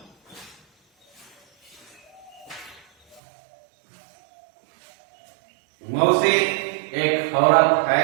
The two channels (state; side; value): drops out; left; at 3.2 s